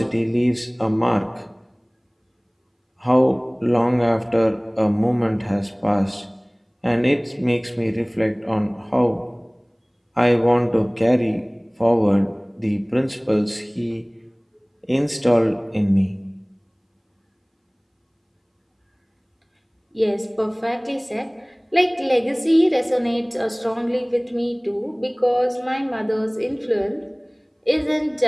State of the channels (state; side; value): identical; both; correlation 1.00